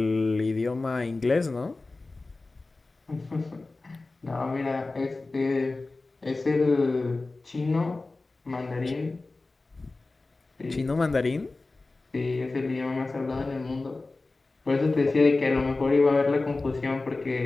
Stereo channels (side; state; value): right; quieter; 3.4 dB